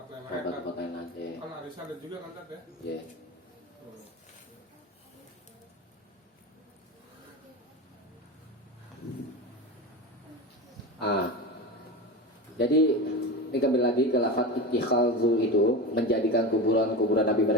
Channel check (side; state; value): both; normal; correlation 0.24